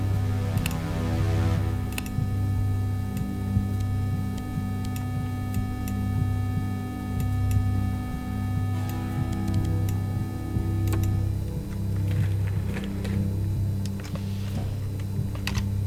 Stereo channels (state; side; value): identical; both; correlation 1.00